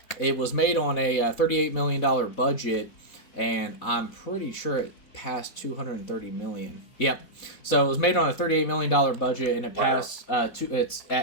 it was made on a $38 million budget, and I'm pretty sure passed 230 million. Yep. So it was made on a $38 million budget, and it passed.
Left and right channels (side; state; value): right; late; 4.1 ms